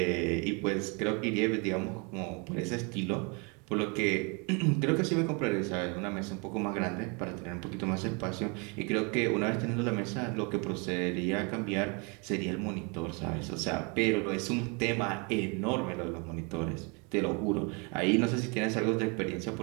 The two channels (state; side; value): quieter; left; 32.4 dB